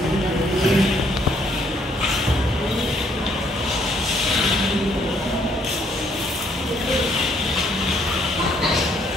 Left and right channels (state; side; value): normal; both; correlation 0.68